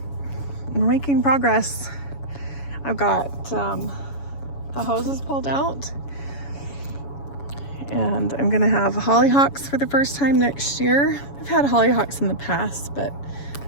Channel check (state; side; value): late; right; 7.1 ms